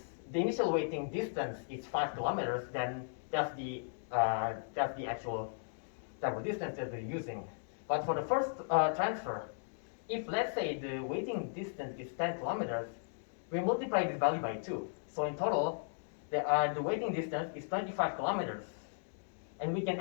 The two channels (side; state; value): right; silent; digital silence